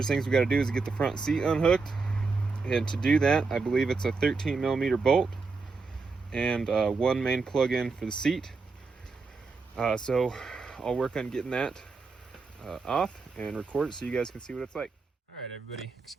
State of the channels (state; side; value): quieter; left; 4.3 dB